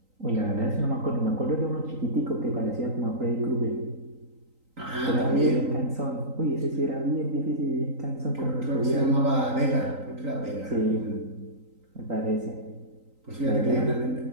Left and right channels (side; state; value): left; late; 3.9 ms